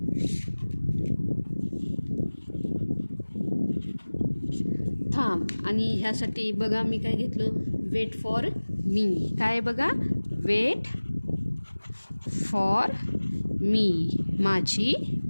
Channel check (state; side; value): inverted; both; correlation -1.00